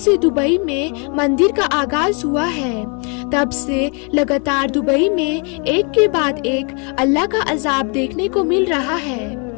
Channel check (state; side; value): quieter; right; 35.6 dB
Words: दुबई में मंदिर का आगाज हुआ है, तब से लगातार दुबई में एक के बाद एक अल्लाह का अजाब देखने को मिल रहा है।